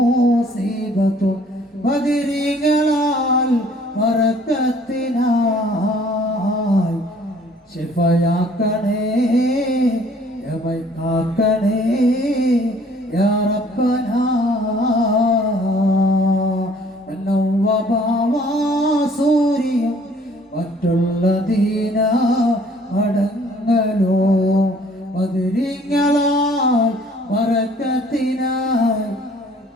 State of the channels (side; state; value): both; normal; correlation 0.57